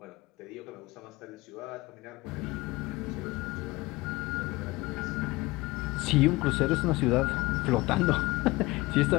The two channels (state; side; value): quieter; right; 21.0 dB